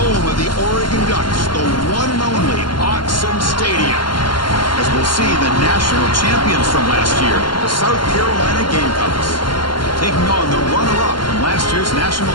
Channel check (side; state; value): right; late; 0.72 ms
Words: of the Oregon Ducks, the one and only Autzen Stadium, as we'll see the national champions from last year, the South Carolina Gamecocks, taking on the runner-up from last year's national